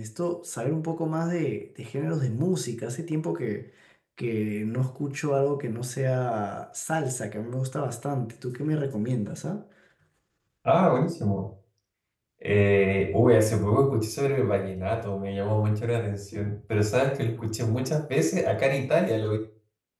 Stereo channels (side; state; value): both; identical; correlation 1.00